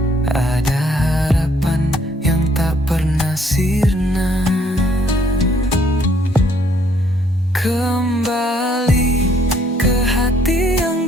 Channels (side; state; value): both; normal; correlation 0.66